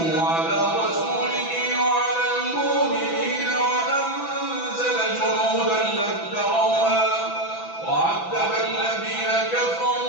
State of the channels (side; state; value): right; late; 6.0 ms